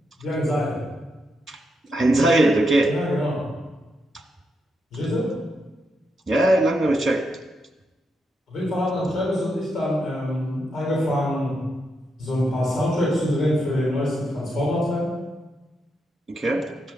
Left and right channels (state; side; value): normal; both; correlation 0.82